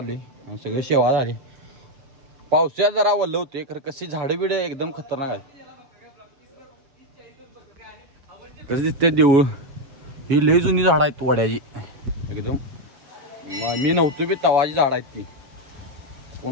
आणि सगळे सेवा झाली. पावसाळ्यात जरा वल्ल होते खरं कशी झाडं बिडं एकदम खतरनाक आहे. कसं दिसते देऊळ. ही लई जुनी झाड आहेत वड्याची एकदम. मी नव्हतो बी तवाची झाड आहेत ती.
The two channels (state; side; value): late; left; 7.3 ms